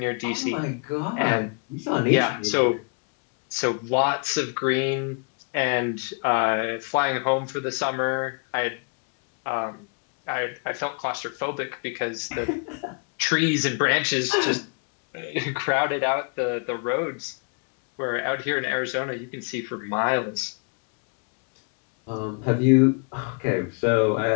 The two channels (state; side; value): quieter; right; 37.9 dB